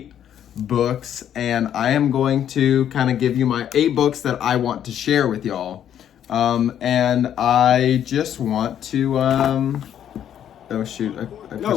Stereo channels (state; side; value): quieter; right; 10.0 dB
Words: books, and I am going to kind of give you my 8 books that I want to share with y'all. And I just want to, oh shoot, I